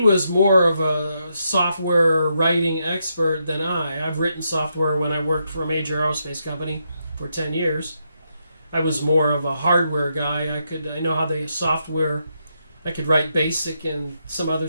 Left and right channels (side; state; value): both; inverted; correlation -0.81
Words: more of a software writing expert than I. I've written software when I worked for a major aerospace company for 10 years. I was more of a hardware guy. I know how the software I could write BASIC and some other